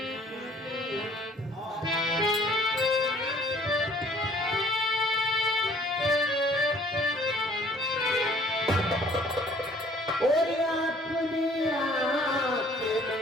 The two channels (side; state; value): both; normal; correlation 0.57